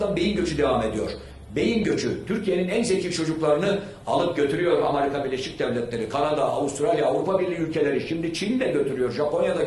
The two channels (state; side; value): identical; both; correlation 1.00